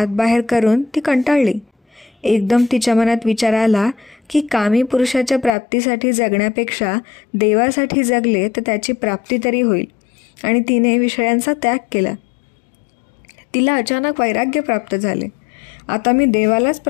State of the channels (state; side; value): drops out; right; at 5.5 s